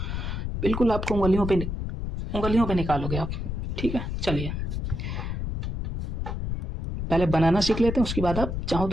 बिल्कुल आपको उंगलियों पे निकालोगे आप। ठीक है, चलिए पहले बनाना सीख लेते हैं, उसके बाद आप चाहो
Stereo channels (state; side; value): noise; left; rumble, 3 dB below the sound